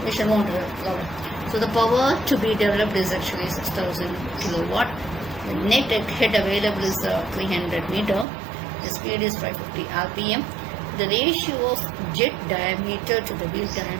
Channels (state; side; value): drops out; left; at 8.2 s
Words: we shall move on to the problem. So the power to be developed is actually 6000 kilowatt. The net head available is 300 meter. The speed is 550 rpm. The ratio of jet diameter to the wheel